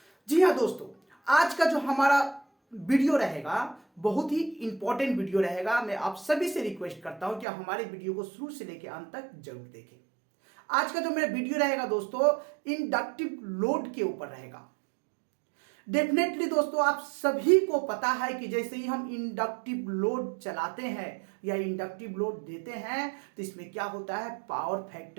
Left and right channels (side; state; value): left; drops out; at 7.5 s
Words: जी हाँ दोस्तों, आज का जो हमारा वीडियो रहेगा बहुत ही इंपॉर्टेंट वीडियो रहेगा। मैं आप सभी से रिक्वेस्ट करता हूं कि आप हमारे वीडियो को शुरू से लेकर अंत तक जरूर देखें। आज का जो मेरा वीडियो रहेगा दोस्तों, इंडक्टिव लोड के ऊपर रहेगा। डेफिनेटली दोस्तों, आप सभी को पता है कि जैसे ही हम इंडक्टिव लोड चलाते हैं या इंडक्टिव लोड देते हैं तो इसमें क्या होता है, पावर